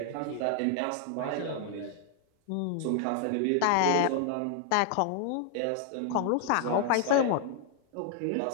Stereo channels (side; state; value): both; different; correlation 0.00